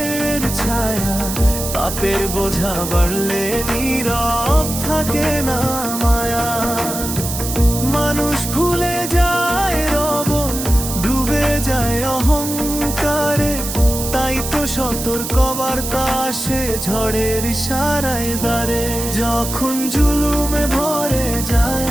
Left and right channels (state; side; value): noise; right; hiss, 6 dB below the sound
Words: ছায়া, পাপের বোঝা বাড়লে নীরব থাকে না মায়া। মানুষ ভুলে যায় রব, ডুবে যায় অহংকারে, তাই তো সতর্ক বার্তা আসে ঝড়ের ইশারায় দ্বারে। যখন জুলুমে ভরে যায়